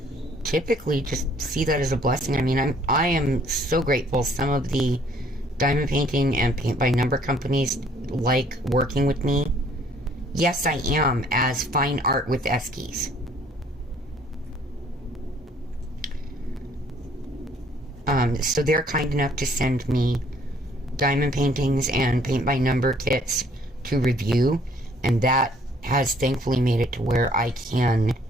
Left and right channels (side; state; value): both; normal; correlation 0.60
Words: typically just see that as a blessing. I mean, I am so grateful. Some of the diamond painting and paint by number companies like working with me. Yes, I am, as Fine Art with Eskies. So they're kind enough to send me diamond paintings and paint by number kits to review, and that has thankfully made it to where I can